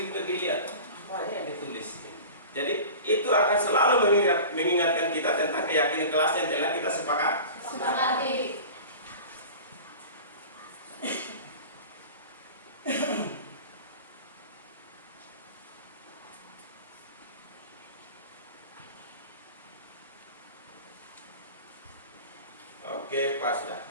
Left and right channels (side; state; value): both; inverted; correlation -0.37